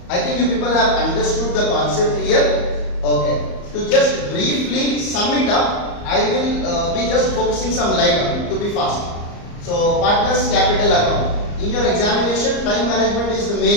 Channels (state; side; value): late; right; 34 ms